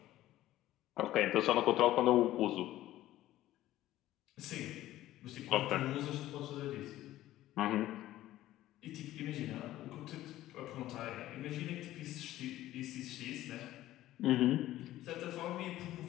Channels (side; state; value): right; quieter; 14.7 dB